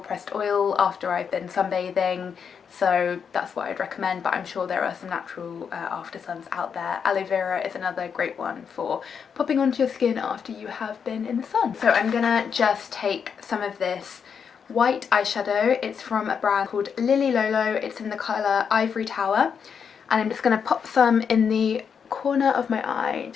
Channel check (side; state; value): right; quieter; 6.8 dB